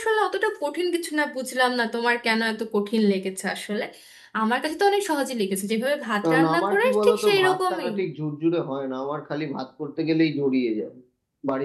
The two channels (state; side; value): identical; both; correlation 1.00